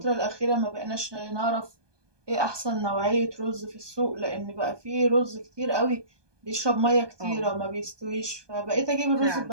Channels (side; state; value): left; late; 1.2 ms